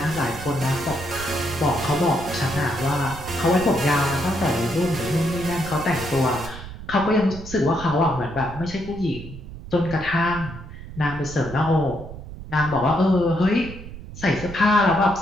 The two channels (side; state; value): right; noise; rumble, 13 dB below the sound